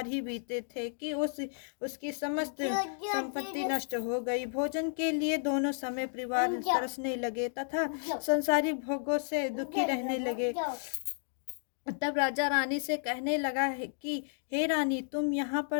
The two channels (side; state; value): right; silent; digital silence